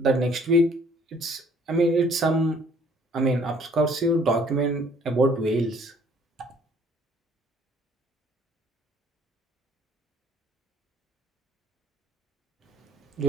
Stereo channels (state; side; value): normal; both; correlation 0.59